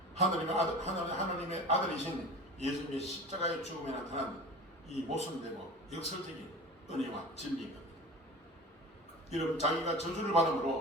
하나님의 아들이신 예수님의 십자가의 죽음에 나타난 이 모순되고 역설적인 은혜와 진리인 겁니다. 여러분 자기가 저주를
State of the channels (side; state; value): both; normal; correlation 0.36